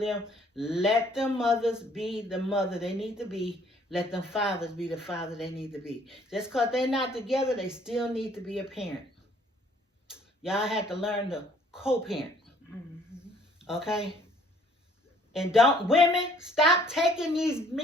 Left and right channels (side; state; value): both; normal; correlation 0.60